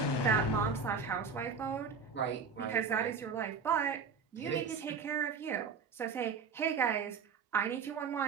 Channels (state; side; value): quieter; left; 5.5 dB